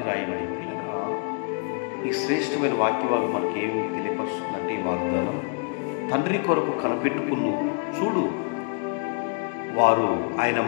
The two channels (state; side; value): quieter; right; 37.5 dB